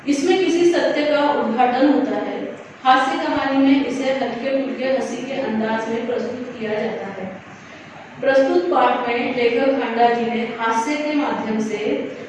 इसमें किसी सत्य का उद्घाटन होता है। हास्य कहानी में इसे हल्के फुल्के हंसी के अंदाज में प्रस्तुत किया जाता है। प्रस्तुत पाठ में लेखक हांडा जी ने हास्य के माध्यम से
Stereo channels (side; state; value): both; identical; correlation 1.00